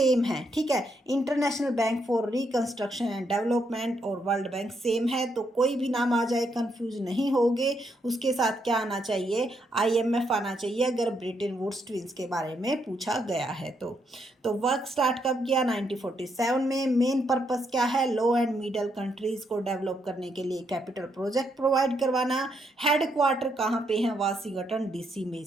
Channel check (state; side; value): normal; both; correlation 0.77